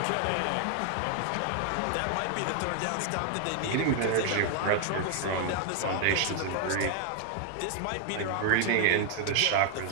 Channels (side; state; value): both; different; correlation 0.00